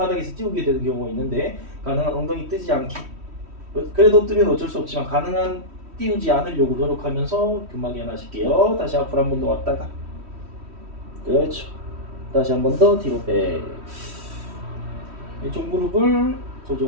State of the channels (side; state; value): left; late; 3.1 ms